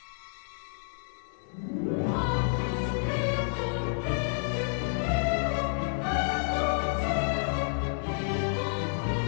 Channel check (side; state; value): right; silent; 58 dB below the other